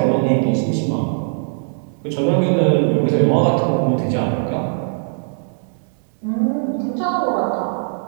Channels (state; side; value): silent; left; 63 dB below the other